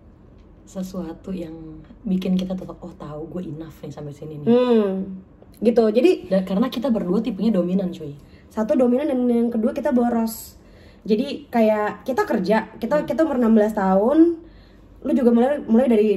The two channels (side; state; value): both; identical; correlation 1.00